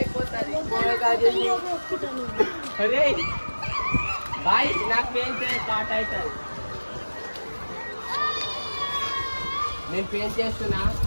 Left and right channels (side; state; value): both; inverted; correlation -1.00